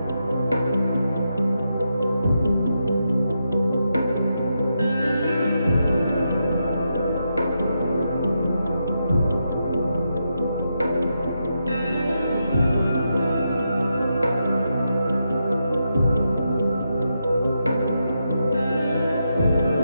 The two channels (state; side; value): inverted; both; correlation -0.84